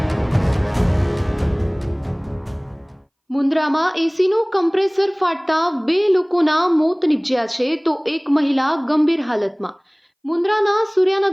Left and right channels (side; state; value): both; identical; correlation 1.00